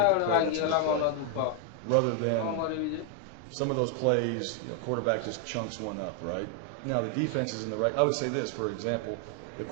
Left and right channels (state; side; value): different; both; correlation 0.00